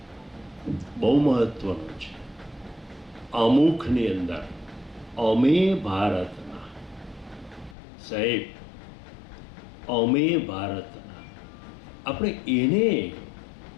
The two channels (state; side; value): drops out; right; at 7.8 s